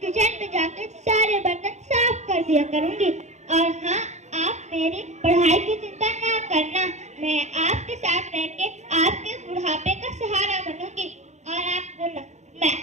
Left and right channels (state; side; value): late; left; 0.33 ms